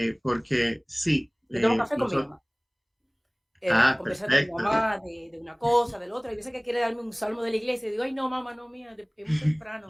porque sí. Yo tomo café con mi mamá. Conversar con mi Perfecto. mamá de una cosa, del otro. Hay veces que quiere darme un salmo de la iglesia y digo, ay, no, mamá, no, mía, es muy temprano,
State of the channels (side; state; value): both; identical; correlation 1.00